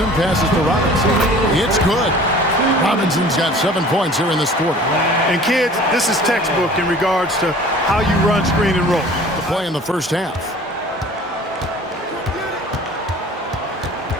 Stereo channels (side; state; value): both; normal; correlation 0.46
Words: passes to Robinson. It's good. Robinson's got 7 points here in this quarter. And kids, this is textbook in regards to how you run screen and roll. The play in the first half.